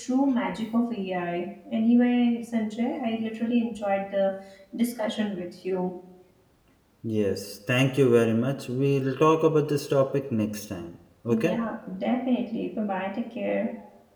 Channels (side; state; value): both; identical; correlation 1.00